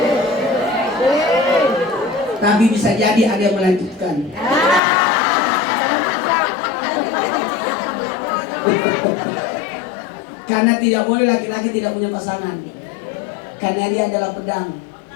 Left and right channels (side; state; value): right; drops out; at 4.8 s